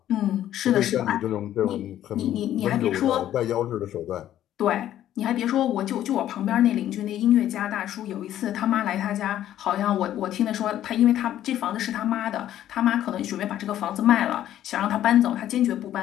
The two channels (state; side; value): quieter; right; 12.0 dB